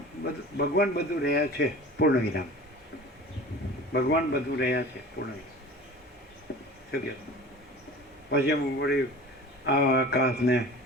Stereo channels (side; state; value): both; normal; correlation 0.40